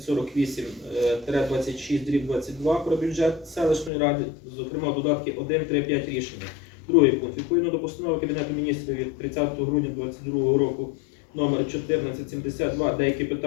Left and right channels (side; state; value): right; drops out; at 3.9 s